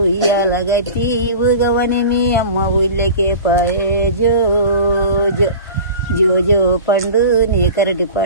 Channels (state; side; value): inverted; both; correlation -0.37